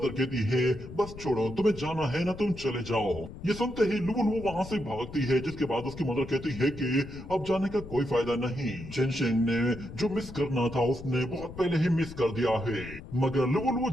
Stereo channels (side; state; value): left; noise; rumble, 13 dB below the sound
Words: कहती है बस छोड़ो, तुम्हें जाना है ना, तुम चले जाओ। ये सुनते ही लुवो वहां से भागती है, जिसके बाद उसकी मदर कहती है कि अब जाने का कोई फायदा नहीं। चेन शेंग ने जो मिस करना था उसने बहुत पहले ही मिस कर दिया है। मगर लुवो